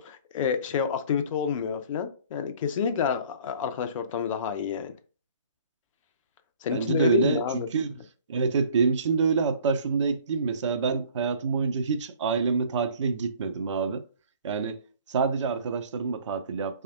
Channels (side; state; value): both; inverted; correlation -0.51